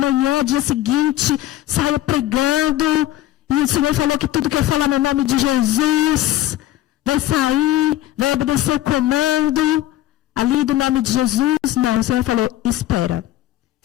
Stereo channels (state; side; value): quieter; right; 13.9 dB